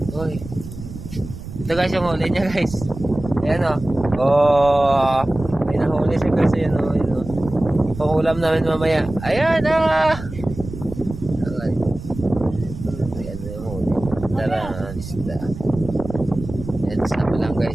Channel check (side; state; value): right; noise; rumble, 12 dB below the sound